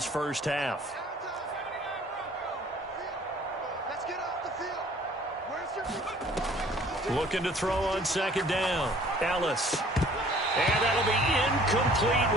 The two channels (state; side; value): normal; both; correlation 0.54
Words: first half. Looking to throw on 2nd down. Ellis. And that'll be incomplete